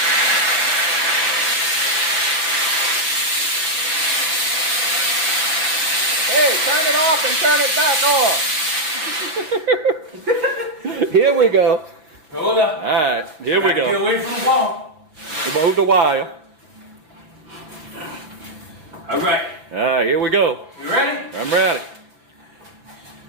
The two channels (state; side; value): late; left; 5.6 ms